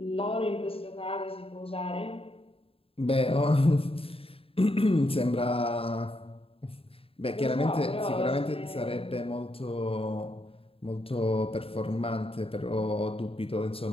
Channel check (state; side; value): late; right; 0.27 ms